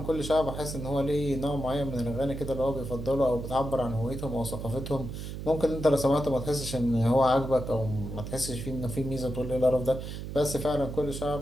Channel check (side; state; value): right; noise; hum, 7 dB below the sound